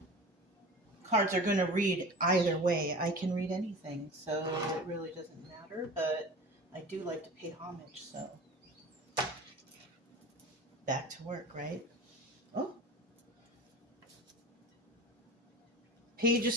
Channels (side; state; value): both; normal; correlation 0.35